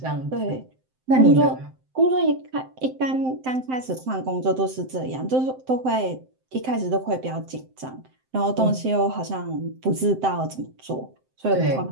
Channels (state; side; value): late; left; 7.7 ms